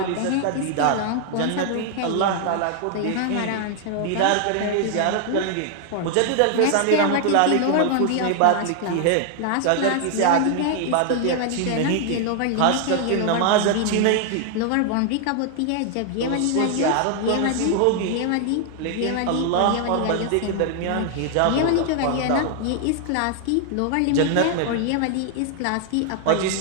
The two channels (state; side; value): different; both; correlation 0.00